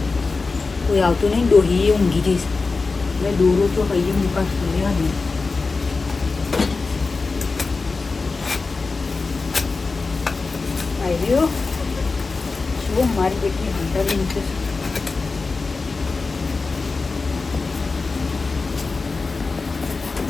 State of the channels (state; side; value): quieter; right; 4.1 dB